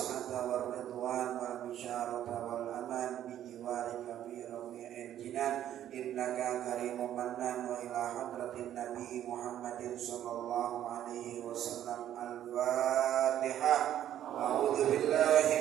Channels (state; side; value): quieter; left; 11.3 dB